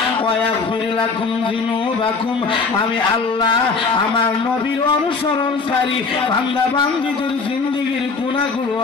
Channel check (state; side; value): quieter; right; 4.5 dB